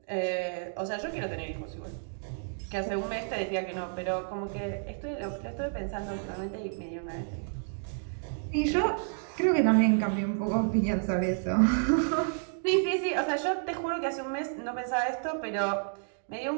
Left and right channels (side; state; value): left; silent; digital silence